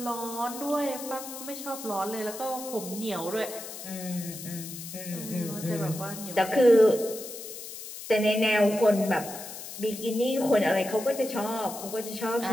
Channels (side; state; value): left; noise; hiss, 11 dB below the sound